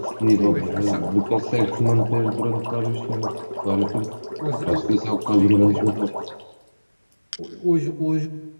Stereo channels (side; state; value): both; inverted; correlation -1.00